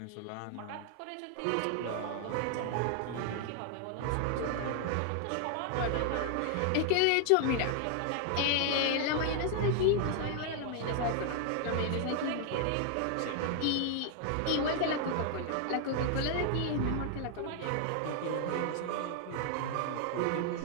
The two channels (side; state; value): both; different; correlation 0.00